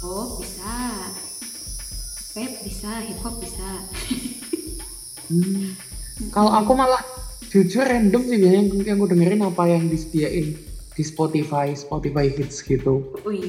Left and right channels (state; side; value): identical; both; correlation 1.00